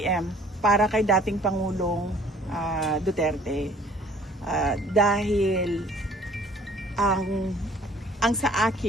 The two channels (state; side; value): normal; both; correlation 0.54